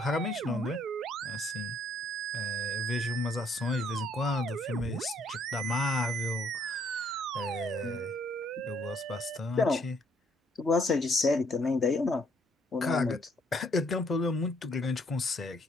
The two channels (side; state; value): both; normal; correlation 0.67